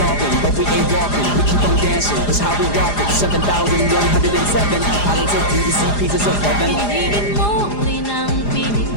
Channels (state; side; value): late; right; 4.9 ms